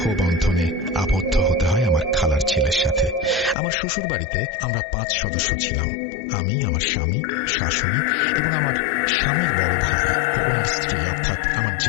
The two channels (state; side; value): drops out; right; at 3.6 s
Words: বন্ধনে আবদ্ধ হতে হয় আমার খালার ছেলের সাথে। আমার শ্বশুর বাড়িতে আমরা 5 সদস্য ছিলাম, আমি, আমার স্বামী, শাশুড়ি এবং আমার স্বামীর বড় ভাই ও ওনার স্ত্রী, অর্থাৎ আমার